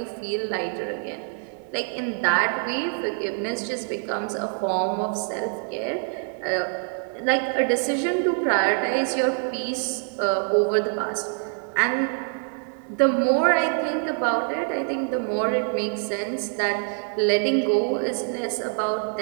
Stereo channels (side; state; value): left; silent; 59 dB below the other